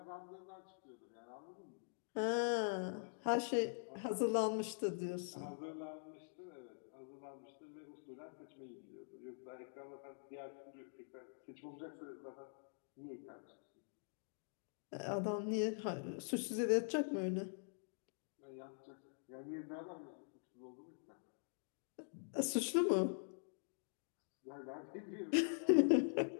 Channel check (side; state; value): right; silent; digital silence